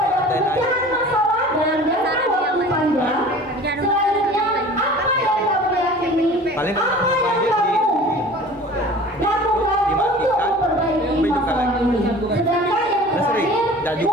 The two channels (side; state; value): both; normal; correlation 0.43